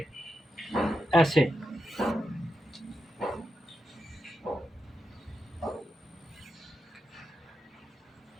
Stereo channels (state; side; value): normal; both; correlation 0.87